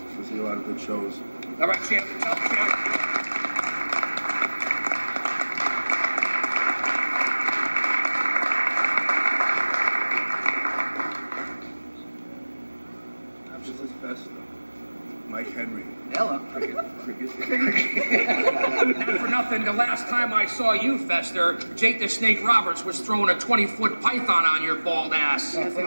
we'll see a lot of good shows. All right, champ. Help, champ. This is Festa. Mike Henry. Hello. Cricket. Not for nothing, the last time I saw you, Fester, Jake the Snake Roberts was throwing a 20-foot python on your bald ass. Yes, he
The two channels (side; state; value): both; inverted; correlation -1.00